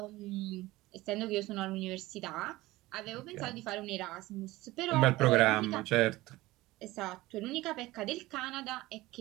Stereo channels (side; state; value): left; quieter; 18.7 dB